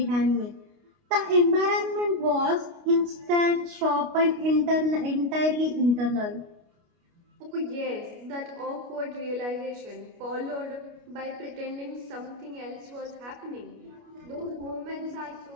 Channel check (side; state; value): left; late; 29 ms